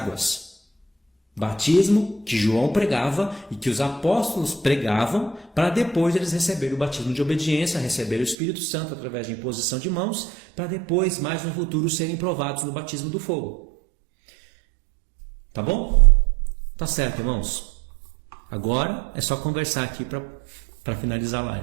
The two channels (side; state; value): left; drops out; at 8.3 s